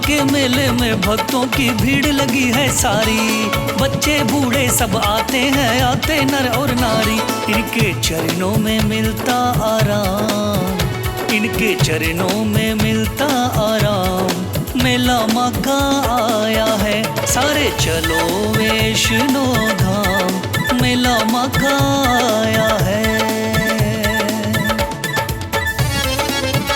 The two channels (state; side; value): identical; both; correlation 1.00